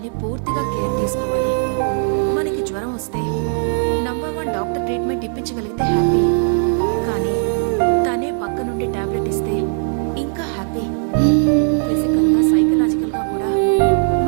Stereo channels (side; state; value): left; silent; digital silence